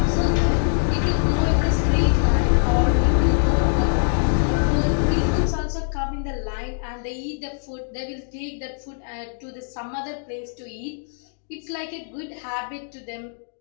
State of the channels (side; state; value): right; silent; digital silence